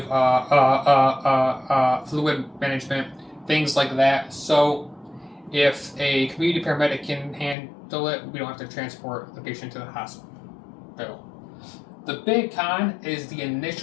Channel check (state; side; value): drops out; right; at 7.6 s